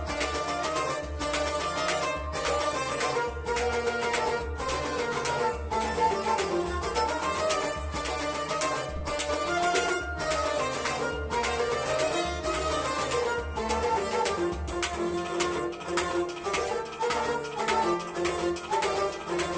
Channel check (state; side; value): identical; both; correlation 1.00